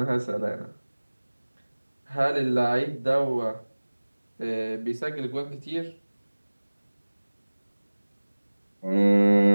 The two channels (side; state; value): both; inverted; correlation -1.00